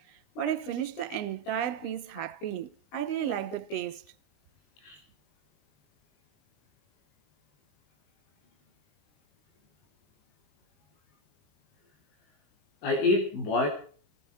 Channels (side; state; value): right; late; 19 ms